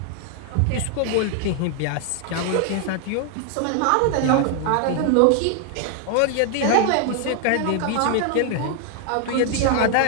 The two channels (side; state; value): both; different; correlation 0.00